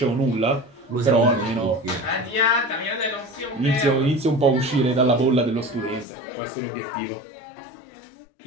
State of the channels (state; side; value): drops out; right; at 6.1 s